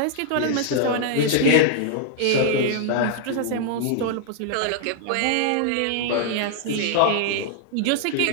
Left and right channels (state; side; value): different; both; correlation 0.00